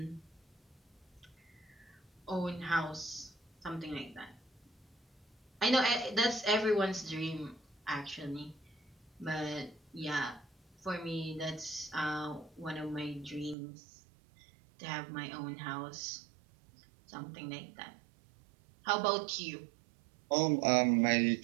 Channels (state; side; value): drops out; left; at 13.6 s